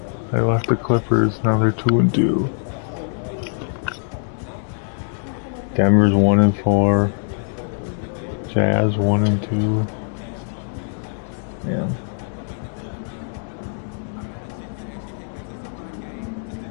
I left the Clippers. Now they're 2-2. Denver's 1-4. Jazz 1-2. Yeah.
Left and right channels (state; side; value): silent; right; digital silence